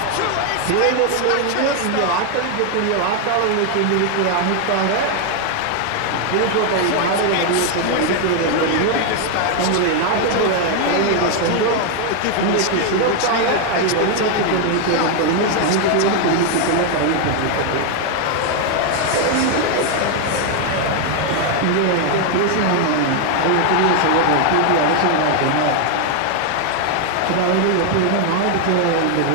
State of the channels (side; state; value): both; different; correlation 0.00